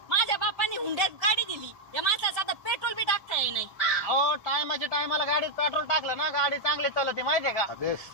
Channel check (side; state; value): left; late; 1.3 ms